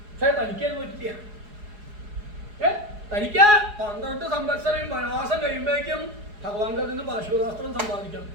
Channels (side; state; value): left; late; 4.8 ms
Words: പക്ഷെ തനിക്കത് പറ്റില്ല. തനിക്ക് 12 സംവത്സരം വനവാസം കഴിയുമ്പോഴേക്കും ഭഗവാന്റെ നിന്ന് പാശുപതാസ്ത്രം സമ്പാദിക്കണം.